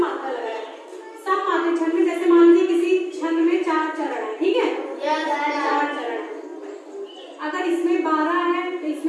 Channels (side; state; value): both; identical; correlation 1.00